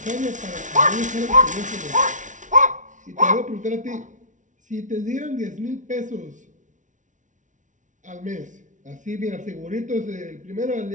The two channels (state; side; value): late; left; 0.37 ms